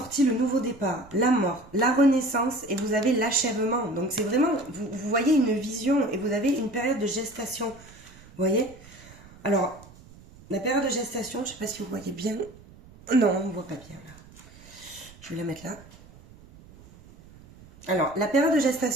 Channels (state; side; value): noise; right; rumble, 22 dB below the sound